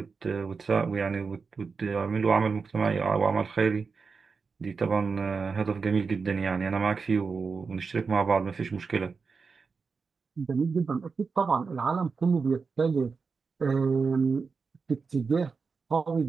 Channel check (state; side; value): quieter; left; 4.9 dB